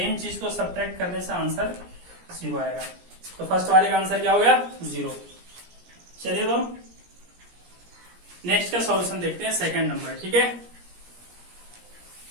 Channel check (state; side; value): late; left; 17 ms